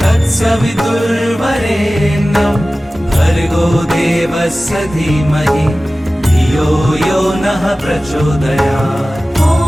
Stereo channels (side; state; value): both; normal; correlation 0.96